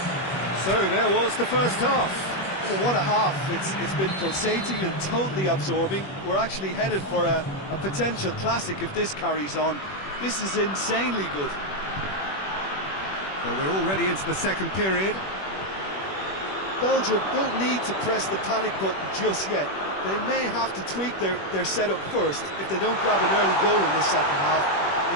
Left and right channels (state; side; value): late; right; 21 ms